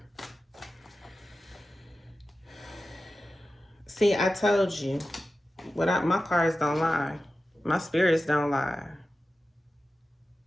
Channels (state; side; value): normal; both; correlation 0.94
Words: See, I told you, my cards don't lie. My spirits don't lie.